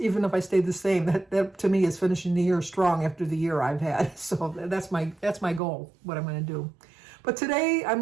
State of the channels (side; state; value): left; drops out; at 5.6 s